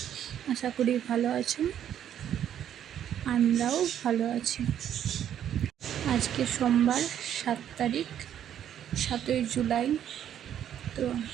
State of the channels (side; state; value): left; quieter; 10.1 dB